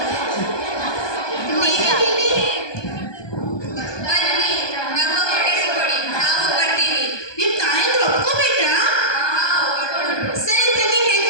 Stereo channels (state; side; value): late; right; 1.2 ms